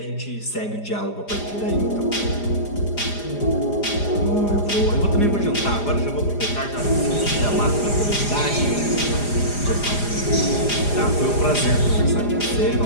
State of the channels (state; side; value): late; right; 4.9 ms